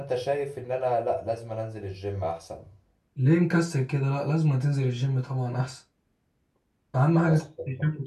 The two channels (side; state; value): both; identical; correlation 1.00